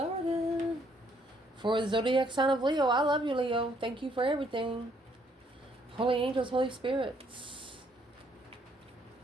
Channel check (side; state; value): both; normal; correlation 0.68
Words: For the zodiac sign of Leo, I love you, Leo. Thank you for everything. Holy angels, Holy spirits.